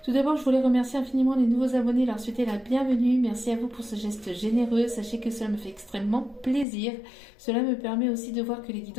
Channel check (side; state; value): right; drops out; at 6.7 s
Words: Tout d'abord, je voulais remercier infiniment les nouveaux abonnés, leur souhaiter la bienvenue. Merci à vous pour ce geste généreux. Sachez que cela me fait extrêmement plaisir. Cela me permet aussi de voir que les